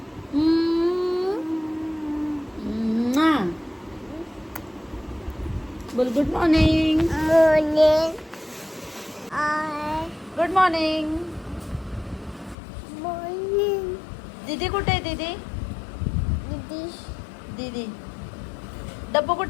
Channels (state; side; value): drops out; right; at 12.6 s